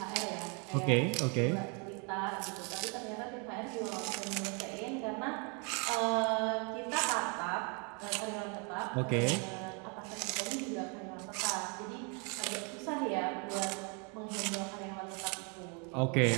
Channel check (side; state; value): left; quieter; 35.3 dB